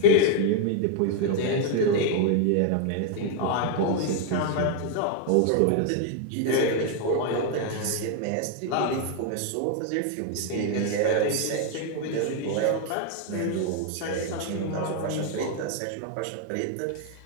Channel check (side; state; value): both; different; correlation 0.00